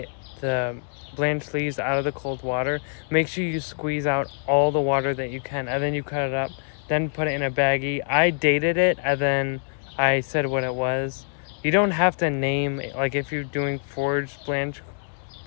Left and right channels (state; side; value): silent; right; digital silence